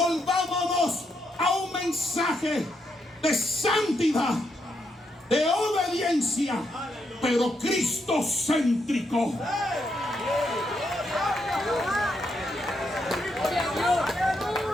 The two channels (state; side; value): normal; both; correlation 0.79